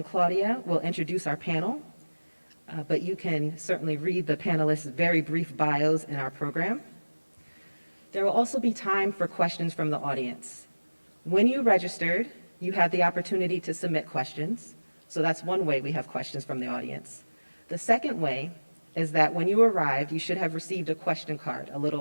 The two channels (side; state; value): both; inverted; correlation -1.00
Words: Claudia will introduce our panel, but you can certainly read the panelists' very brief bios in our program. There will also be time for questions from the audience. When you registered, you had the opportunity to submit questions, so that's one way we have questions from the audience. The second way is that when you arrived, you should have received a question card, a